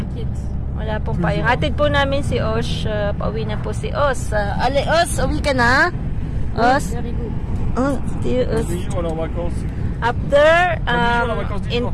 Wala pong payong. Hatid po namin si Osh. Pauwi na po si Os. Ale, Os, uwi ka na? Os? Very good. Oh, Os. After, in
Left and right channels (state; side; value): identical; both; correlation 1.00